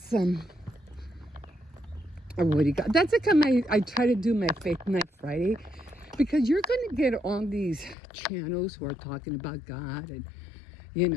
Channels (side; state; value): right; drops out; at 8.0 s